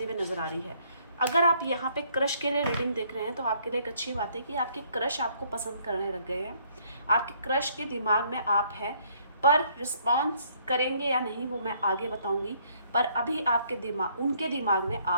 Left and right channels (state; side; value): inverted; both; correlation -0.65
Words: हुए नज़र आ रही है। अगर आप यहाँ पे क्रश के लिए रीडिंग देख रहे हैं तो आपके लिए एक अच्छी बात है कि आपके क्रश आपको पसंद करने लग गए हैं, आपके क्रश के दिमाग में आप हैं, पर रिस्पॉन्स करेंगे या नहीं वो मैं आगे बताऊंगी। पर अभी आपके दिमाग, उनके दिमाग में